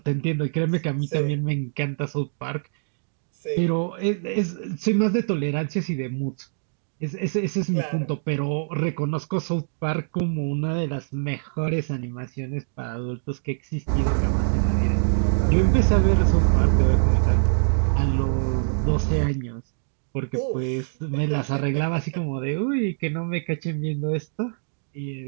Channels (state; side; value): silent; left; digital silence